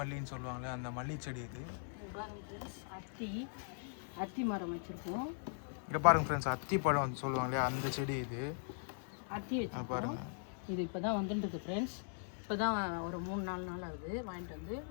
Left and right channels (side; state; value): right; silent; digital silence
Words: சொல்லுவாங்களே அந்த மல்லி செடி இது. அத்தி மரம் வச்சுருக்கோம். இங்கே பாருங்கள் ஃப்ரெண்ட்ஸ், அத்தி பழம் சொல்லுவாங்களே அந்த செடி இது. அத்தி வச்சு பாருங்கள். இது இப்போ தான் வந்துட்டுருக்கு ஃப்ரெண்ட்ஸ். இப்போ தான் ஒரு 3-4 நாள் ஆகுது வாங்கிட்டு வந்து